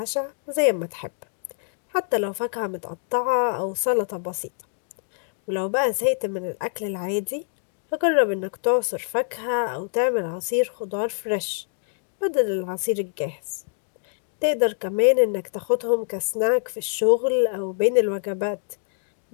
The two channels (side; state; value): right; silent; digital silence